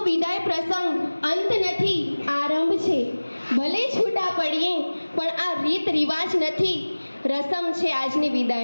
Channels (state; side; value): inverted; both; correlation -1.00